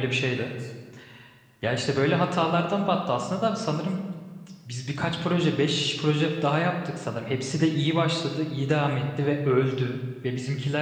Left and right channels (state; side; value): identical; both; correlation 1.00